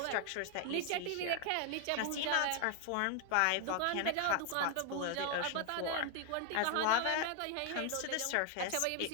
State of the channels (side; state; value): both; different; correlation 0.00